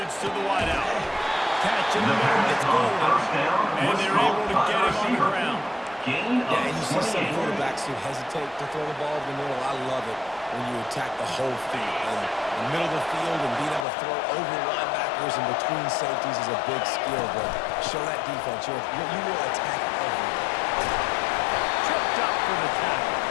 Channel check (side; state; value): right; drops out; at 13.9 s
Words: to the wideout. Catch in the middle, gets going. And they're able to get him on the ground. Yeah, and you see some quarterbacks who hesitate to throw the ball in the middle. I love it when you attack the whole field. And the middle of the field and being able to throw over linebackers and between safeties is a big skill. But show that defense. You will attack everything. Tripped up for the tackle.